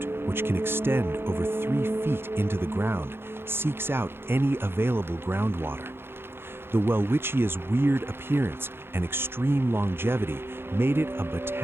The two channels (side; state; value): left; late; 0.11 ms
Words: which can extend over 3 feet into the ground, seeks out any available groundwater. The Welwitschia's weird appearance and extreme longevity made it a